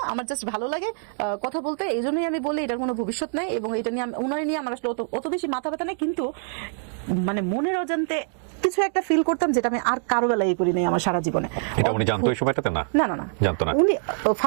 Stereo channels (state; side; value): silent; left; digital silence